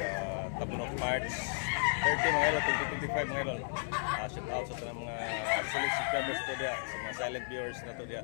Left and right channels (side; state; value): right; silent; 55 dB below the other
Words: Tabunok March 30 mga idol, 2025 mga idol. Shout out sa mga solid subscribers to dia, sa mga silent viewers na to dia.